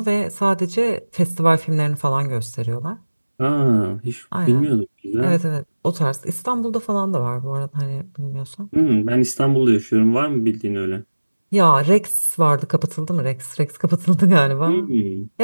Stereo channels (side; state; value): both; inverted; correlation -1.00